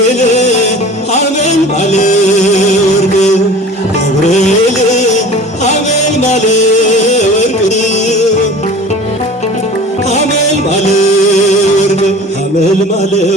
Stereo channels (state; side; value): normal; both; correlation 0.42